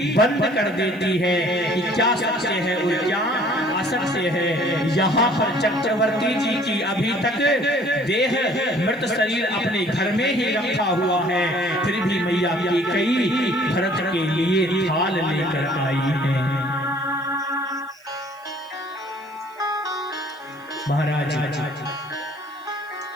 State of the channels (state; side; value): noise; right; hiss, 30 dB below the sound